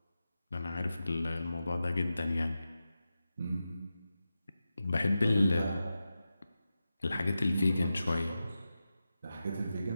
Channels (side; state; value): both; inverted; correlation -0.92